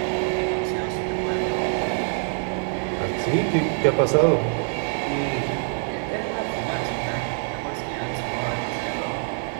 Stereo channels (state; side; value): silent; left; 61 dB below the other